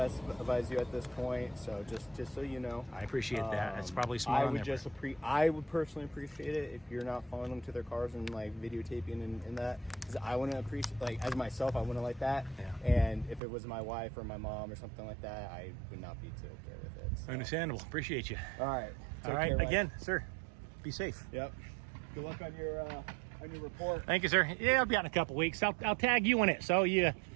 advise you at this point, so just so you know. I appreciate that. It's probably smart I on would their just I would personally appreciate it if you're not following them to their cars and like videotaping and that, because I wouldn't appreciate, like, as myself, I wouldn't like that. Yeah. And if it was my wife or my mom or something like that, I would not be too okay with it. So. Understandable. Appreciate you. All right. All right. Again, sir, be safe. Yep. Good luck on your report. Thank you, sir. Yeah, I'll be out in a couple weeks. I'll tag you in it. So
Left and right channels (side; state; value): left; drops out; at 13.4 s